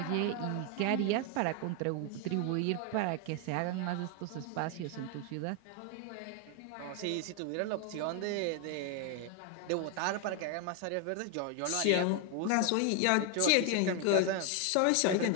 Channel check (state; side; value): different; both; correlation 0.01